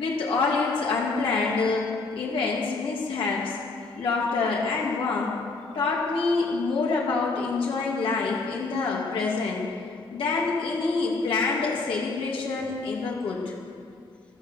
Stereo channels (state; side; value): quieter; right; 3.8 dB